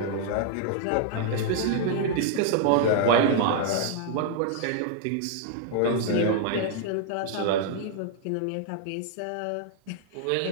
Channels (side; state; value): both; different; correlation -0.01